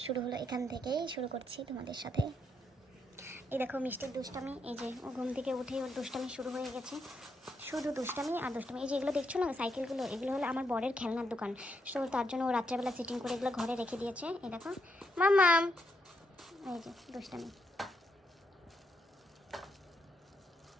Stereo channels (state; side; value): normal; both; correlation 0.78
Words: শুরু হলো এখান থেকেই শুরু করছি তোমাদের সাথে। এই দেখো মিষ্টির দুষ্টামি, এই যে ও ঘুম থেকে উঠেই ওর দুষ্টামি শুরু হয়ে গেছে। শুধু দুষ্টামি আর দুষ্টামি। এই যে এগুলো দেখছো না সাইকেলগুলো, এগুলো হলো আমার বরের খেলনার দোকান। সো তার জন্য ও রাত্রেবেলা সেটিং করে এগুলো ঘরে রেখে দিয়েছে। এই দেখো মাম্মাম, এই যে দুষ্টামি